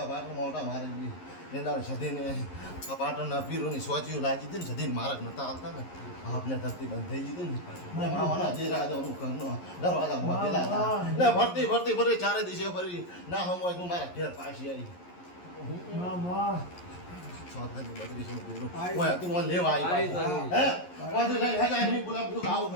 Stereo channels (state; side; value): late; right; 11 ms